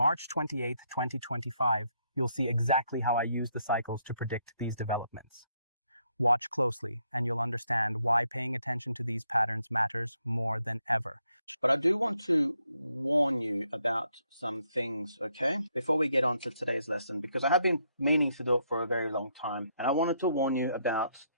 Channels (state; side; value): inverted; both; correlation -0.74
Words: 28, 2025, you'll see exactly how I use the cycles to predict these developments. Watch closely, and you'll understand why paying attention to these patterns matters more than ever. But I do want to warn you about some things, okay? Before we get on to today's lesson, because I have been meaning to do it for a very long time. And I wanted to warn you about